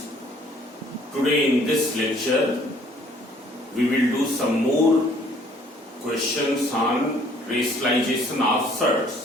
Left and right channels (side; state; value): both; normal; correlation 0.59